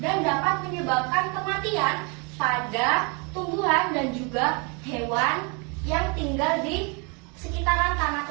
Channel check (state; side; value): quieter; left; 32.8 dB